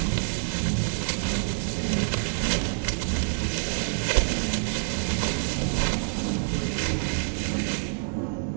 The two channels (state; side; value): silent; left; 60 dB below the other